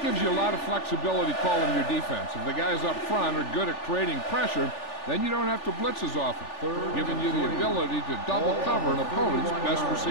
gives you a lot of flexibility calling your defense. If the guys up front are good at creating pressure, then you don't have to blitz as often, giving you the ability to double cover an opponent's best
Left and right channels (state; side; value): late; right; 3.4 ms